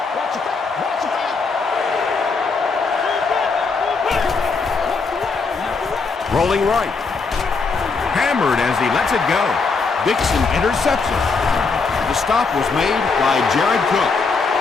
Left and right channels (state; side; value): quieter; right; 4.5 dB